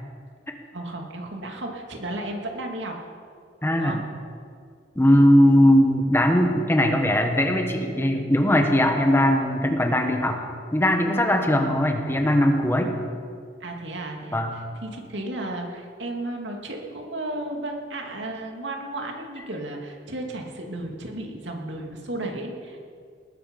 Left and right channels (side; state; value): both; normal; correlation 0.80